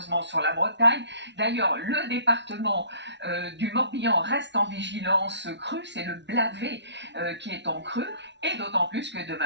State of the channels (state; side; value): late; left; 0.51 ms